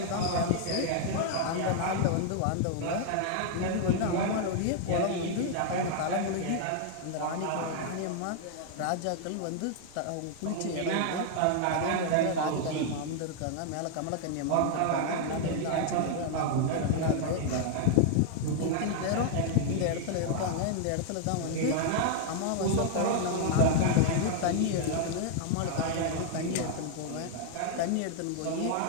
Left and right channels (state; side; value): different; both; correlation 0.00